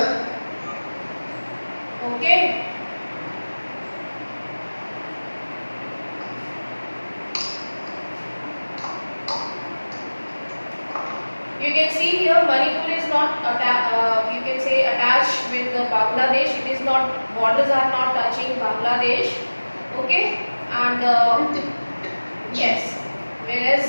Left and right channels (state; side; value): inverted; both; correlation -1.00